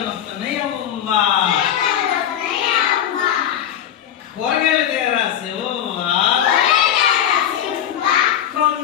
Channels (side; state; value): right; quieter; 10.2 dB